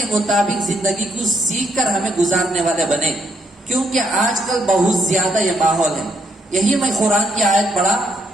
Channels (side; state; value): both; normal; correlation 0.75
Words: مطابق زندگی کو سیکھ کر ہمیں گزارنے والے بنے. کیونکہ آج کل بہت زیادہ یہ ماحول ہے. یہی میں قرآن کی آیت پڑھا,